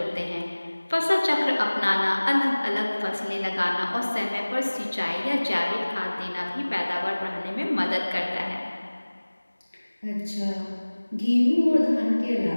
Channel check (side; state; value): both; inverted; correlation -1.00